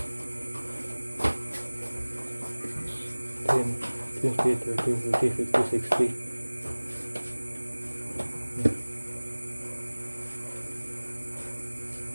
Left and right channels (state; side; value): inverted; both; correlation -1.00